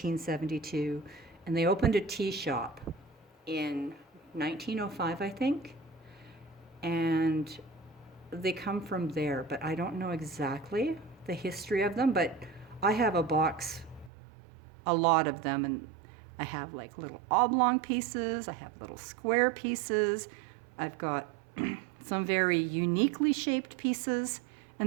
and they opened a tea shop in 1905, I think, and they come from there, but I don't know exactly the history of them, but I have a box, a lot of them, and I have like little oblong pieces, I have little square pieces, I've got some very uniquely shaped pieces,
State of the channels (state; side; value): drops out; left; at 14.1 s